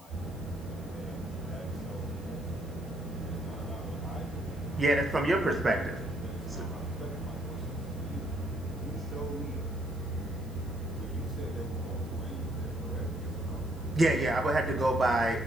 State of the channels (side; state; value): both; normal; correlation 0.68